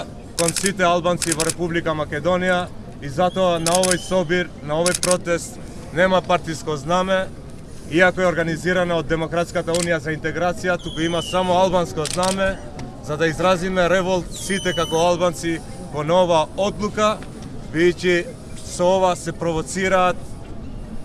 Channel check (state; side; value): identical; both; correlation 1.00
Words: кон сите албанци во Република Македонија и затоа на овој собир, на овој протест нема партиско знаме, иако е организирана од Демократската унија за интеграција, туку има само албанско знаме, за да изразиме револт сите како албанци кон ова одлука, бидејќи со ова се провоцираат